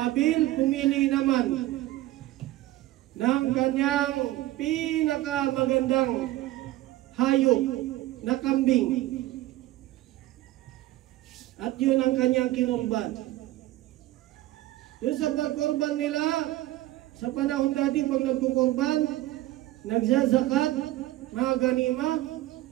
pumili naman ng kanyang pinakamagandang hayop na kambing. At yun ang kanyang kinurban. Yun sa pagkurban nila, sa panahon dati pag nagkukurban, nagzazakat, mga ganima,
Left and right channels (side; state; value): left; quieter; 15.9 dB